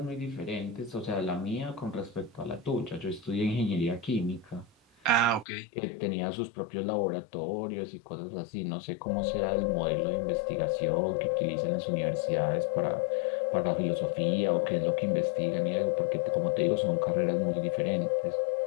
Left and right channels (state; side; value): drops out; right; at 5.5 s